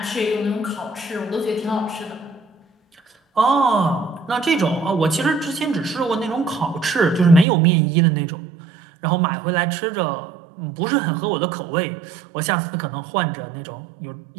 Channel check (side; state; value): left; drops out; at 7.5 s